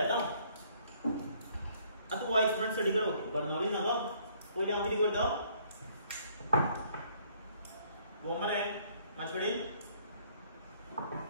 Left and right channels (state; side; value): inverted; both; correlation -0.63